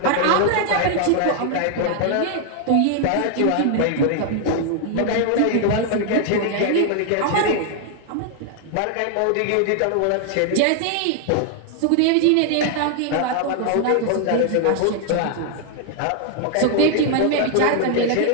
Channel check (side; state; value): both; different; correlation 0.00